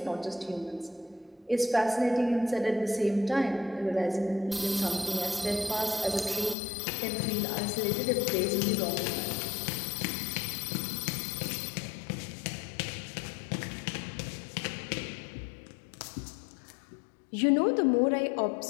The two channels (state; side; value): drops out; right; at 6.6 s